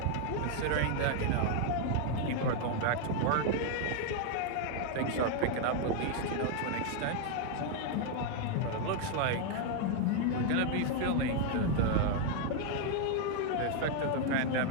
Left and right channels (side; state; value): both; different; correlation 0.00